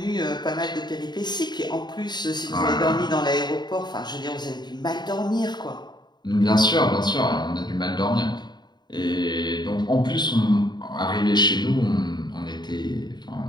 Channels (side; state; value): right; late; 0.21 ms